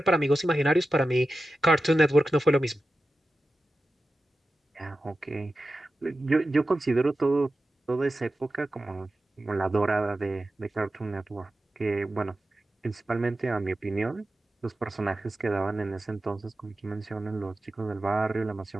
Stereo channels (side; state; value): both; normal; correlation 0.93